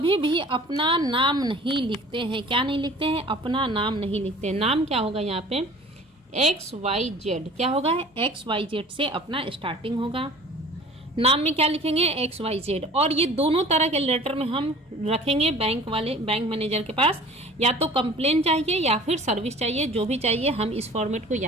भी अपना नाम नहीं लिखते हैं। क्या नहीं लिखते हैं, अपना नाम नहीं लिखते हैं। नाम क्या होगा यहाँ पे, XYZ, क्या होगा, XYZ से अपना स्टार्टिंग होगा। नाम में क्या लिखेंगे, XYZ। और ये दोनों तरह के लेटर में हम रखेंगे बैंक मैनेजर के पास, या तो कंप्लेन चाहिए या फिर सर्विस चाहिए, जो भी चाहिए हम इस फॉर्मेट को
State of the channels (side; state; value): both; normal; correlation 0.45